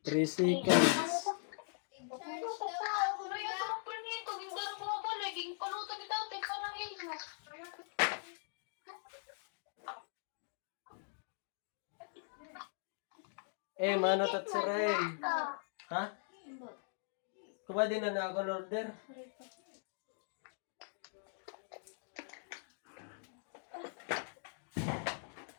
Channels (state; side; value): silent; right; digital silence